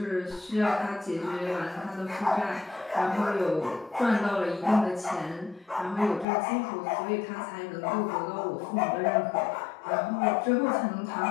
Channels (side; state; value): right; drops out; at 6.2 s